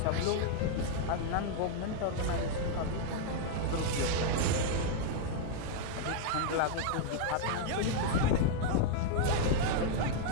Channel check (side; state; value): both; different; correlation 0.00